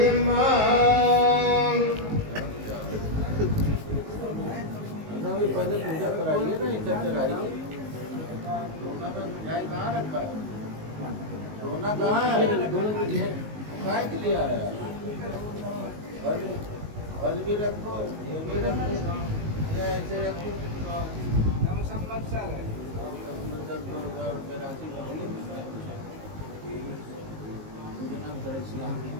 भी पहले पूजा कराइए ना इधर चढ़ाइए। सोना का मिठाई कहाँ रखा है? सोना कहाँ है? काय के लिए आया? फल फल भी रखो, ये भी रखो, या ऐसे रखो। नम संवत्सर है। संवत्सर 2000 राशि करिए। मुझे नाम करें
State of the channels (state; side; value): late; left; 19 ms